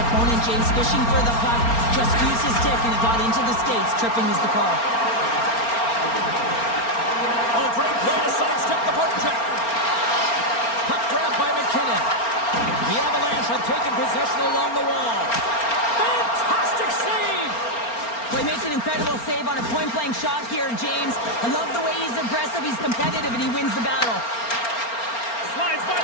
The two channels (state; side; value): late; right; 4.3 ms